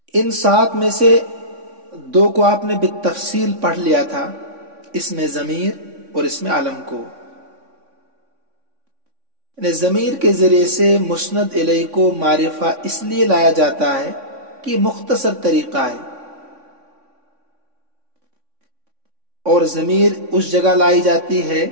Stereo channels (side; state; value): left; late; 3.6 ms